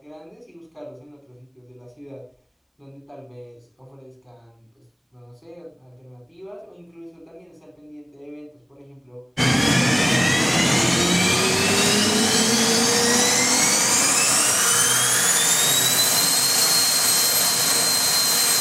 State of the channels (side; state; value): both; identical; correlation 1.00